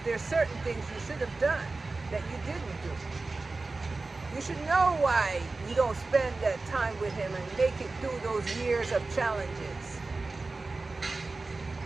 there's certain things you should have done that you didn't do. You should know why you don't spend that time with him and make it through those years of challenges.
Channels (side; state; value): left; quieter; 3.6 dB